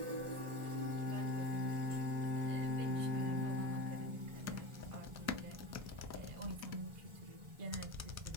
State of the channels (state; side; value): late; left; 1.4 ms